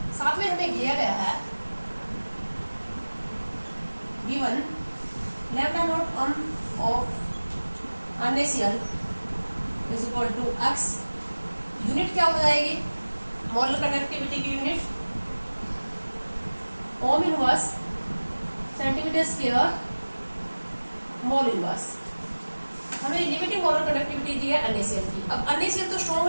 साथ में हमें दिया गया है given lambda naught of NaCl is equal to x. Unit क्या हो जाएगी मोलर कंडक्टिविटी की unit? Ohm inverse centimetre square mole inverse. हमें लिमिटिंग मोलर कंडक्टिविटी दी है NaCl की. अब NaCl तो स्ट्रॉन्ग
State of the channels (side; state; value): both; inverted; correlation -1.00